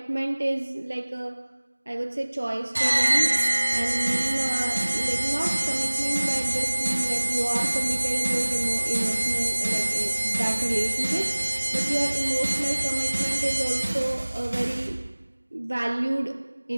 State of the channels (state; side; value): inverted; both; correlation -1.00